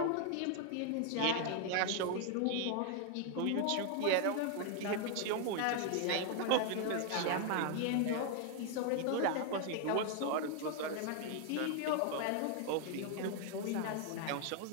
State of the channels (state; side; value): different; both; correlation 0.00